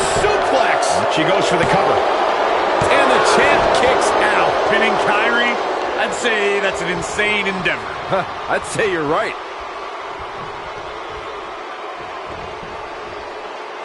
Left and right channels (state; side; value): identical; both; correlation 1.00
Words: suplex. She goes for the cover. And the champ kicks out. Pinning Kyrie, I'd say that's an insane endeavor. I'd say you're right.